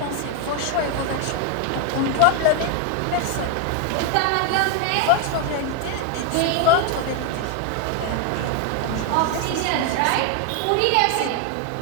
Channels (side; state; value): both; different; correlation 0.00